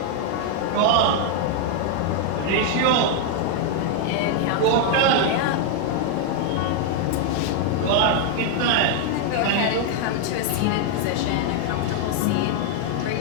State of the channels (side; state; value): both; different; correlation 0.00